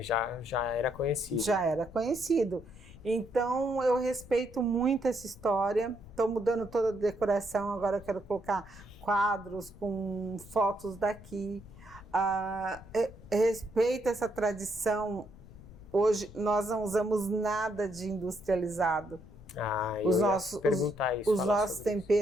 Já era conhecido. Já era conhecido. Então eu respeito muito essa história. Estou mudando toda a decoração, agora eu quero colocar quadros com fotos daqui. Respeito essa tradição. Hoje nós não usamos nada de industrializado. Os nossos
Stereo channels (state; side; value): noise; left; rumble, 19 dB below the sound